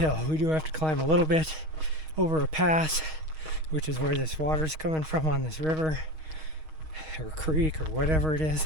We do have to climb a little bit over a pass, which is where this water's coming from on this river or creek or whatever it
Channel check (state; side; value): late; left; 6.4 ms